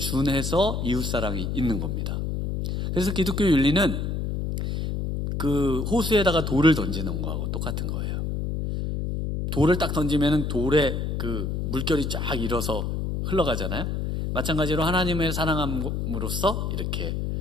이웃사랑이 있는 겁니다. 그래서 기독교 윤리는 그 호수에다가 돌을 던지는 거하고 똑같은 거예요. 돌을 딱 던지면 돌에 그 물결이 쫙 일어서 흘러가잖아요. 마찬가지로 하나님의 사랑함으로써 이렇게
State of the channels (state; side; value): noise; left; hum, 2 dB below the sound